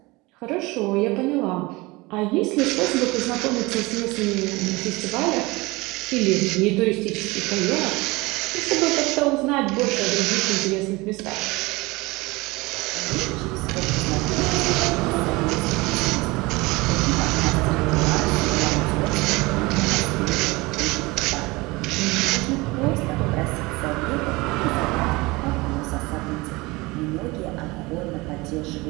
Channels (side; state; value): left; quieter; 22.9 dB